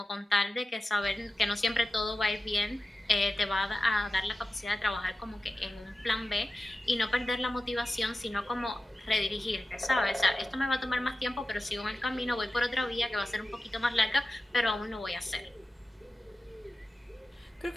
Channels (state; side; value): normal; both; correlation 0.94